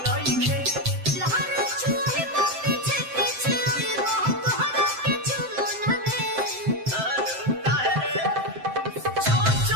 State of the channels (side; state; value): left; late; 7.7 ms